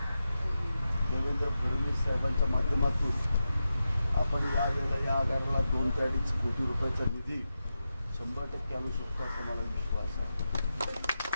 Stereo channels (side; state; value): both; inverted; correlation -0.90